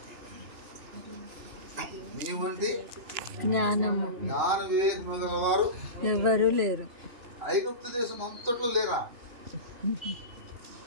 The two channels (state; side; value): late; left; 3.0 ms